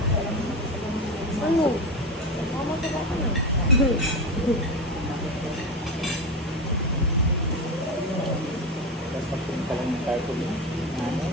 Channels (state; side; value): normal; both; correlation 0.20